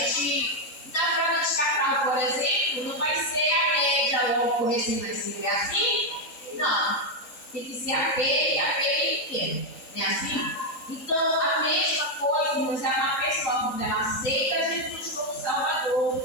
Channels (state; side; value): late; right; 3.9 ms